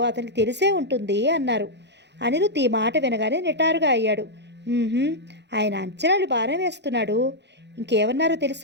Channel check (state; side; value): late; left; 0.50 ms